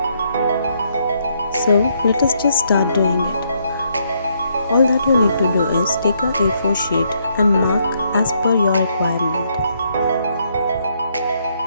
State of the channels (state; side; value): inverted; both; correlation -0.73